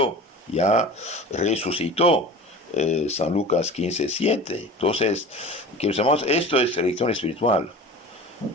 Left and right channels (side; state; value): both; normal; correlation 0.37